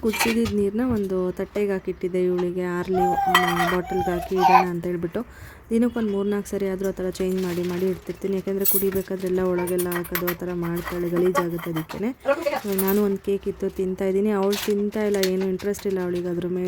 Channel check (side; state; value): both; identical; correlation 1.00